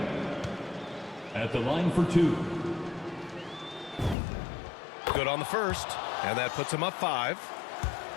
at the line for 2. Good on the first, and that puts him up 5.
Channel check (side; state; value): right; drops out; at 4.2 s